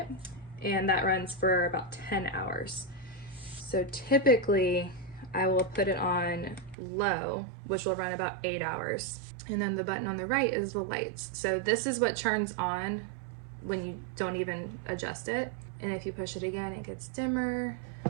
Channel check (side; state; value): left; drops out; at 6.8 s